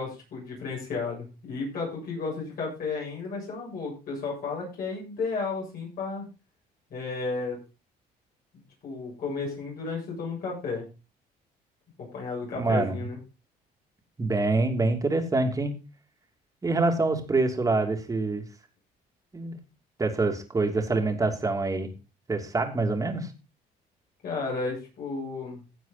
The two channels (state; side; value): normal; both; correlation 0.67